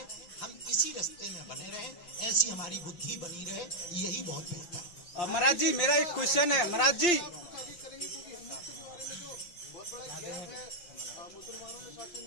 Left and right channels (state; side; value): late; right; 5.7 ms